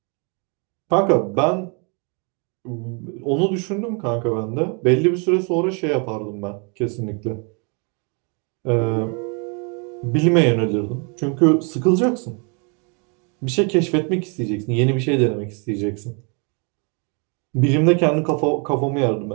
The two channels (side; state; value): left; quieter; 35.5 dB